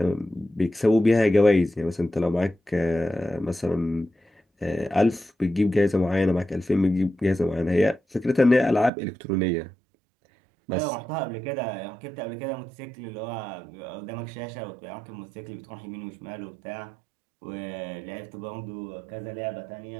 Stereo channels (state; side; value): drops out; left; at 8.9 s